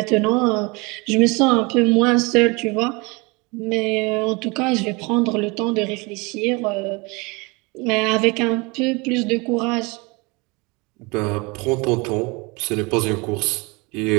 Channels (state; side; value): quieter; left; 27.0 dB